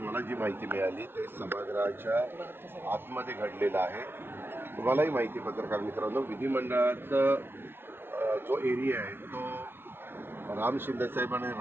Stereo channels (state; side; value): late; left; 0.11 ms